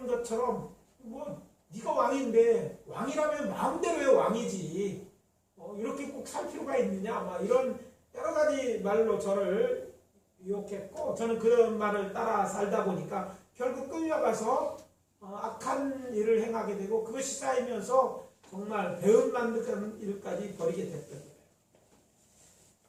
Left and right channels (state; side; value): identical; both; correlation 1.00